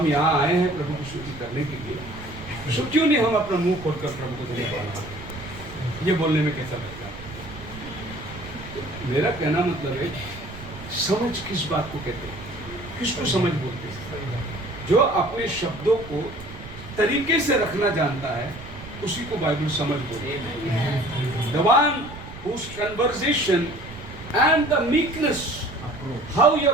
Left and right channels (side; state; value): right; noise; rumble, 14 dB below the sound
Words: यहाँ आए हैं प्रभु की स्तुति करने के लिए, सो क्यों नहीं हम अपना मुंह खोलकर प्रभु को धन्यवाद? ये बोलने में कैसा लगता है? मेरा कहना मतलब है, समझ किस बात को कहते हैं, किसको समझ बोलते हैं? जो अपने शब्दों को तरीके से रखना जानता है उसी को बाइबल समझ बोलते हैं। The one whose conversation and the meekness, how